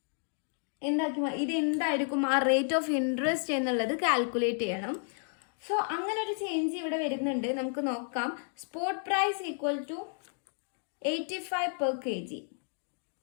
എന്തായിരിക്കും ആ റേറ്റ് ഓഫ് ഇൻട്രസ്റ്റ് എന്നുള്ളത് കാൽക്കുലേറ്റ് ചെയ്യണം. സോ അങ്ങനെ ഒരു ചേഞ്ച് ഇവിടെ വരുന്നുണ്ട്. നമുക്ക് നോക്കാം. Spot price equal to 85 per kg.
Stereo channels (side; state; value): right; silent; 57 dB below the other